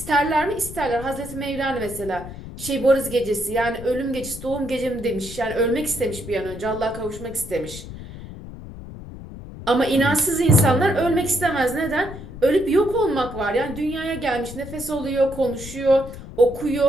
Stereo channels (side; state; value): left; noise; rumble, 13 dB below the sound